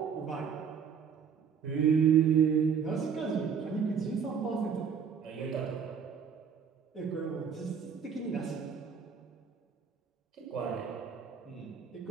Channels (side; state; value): left; quieter; 6.9 dB